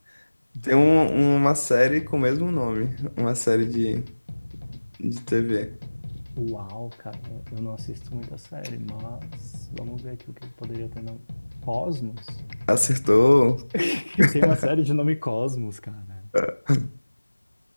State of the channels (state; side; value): inverted; both; correlation -1.00